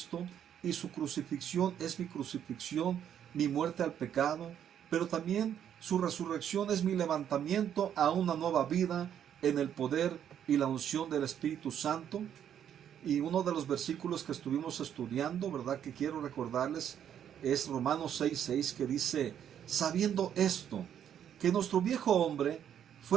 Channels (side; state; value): left; quieter; 9.4 dB